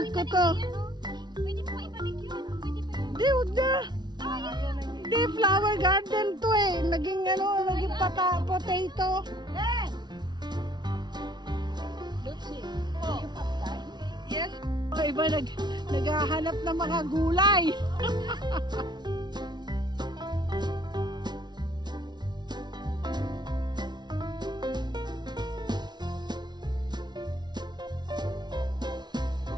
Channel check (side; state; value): left; late; 0.20 ms